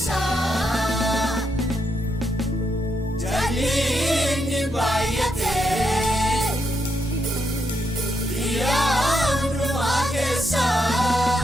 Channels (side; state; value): both; normal; correlation 0.80